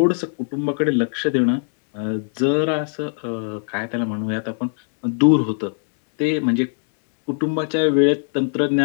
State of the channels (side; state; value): right; silent; 65 dB below the other